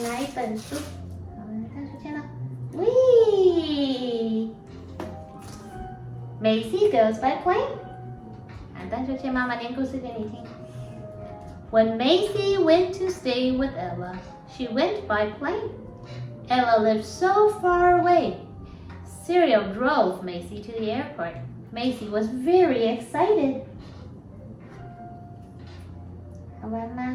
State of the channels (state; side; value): identical; both; correlation 1.00